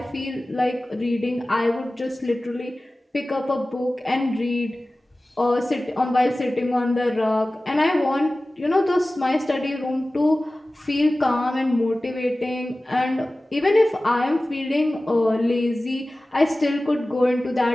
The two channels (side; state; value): both; normal; correlation 0.97